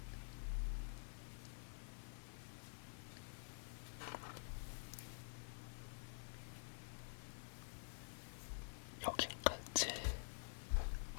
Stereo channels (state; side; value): silent; right; digital silence